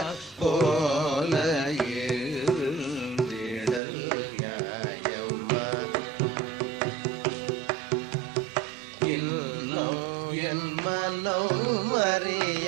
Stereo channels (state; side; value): drops out; left; at 3.8 s